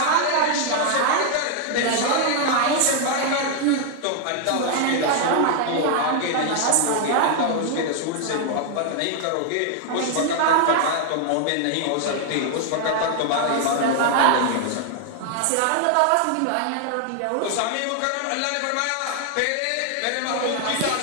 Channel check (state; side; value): different; both; correlation 0.00